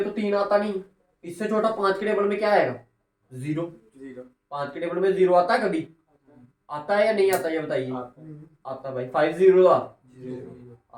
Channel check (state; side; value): identical; both; correlation 1.00